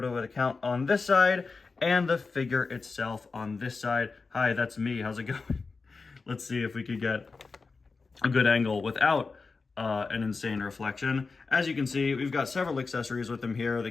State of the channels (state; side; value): quieter; right; 4.3 dB